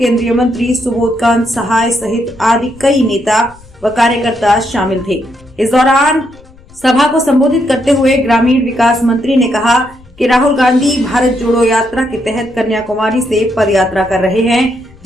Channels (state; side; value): noise; left; rumble, 25 dB below the sound